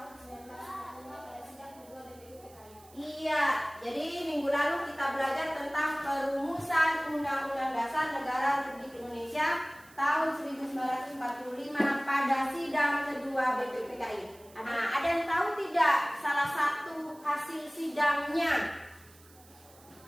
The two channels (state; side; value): noise; right; hiss, 25 dB below the sound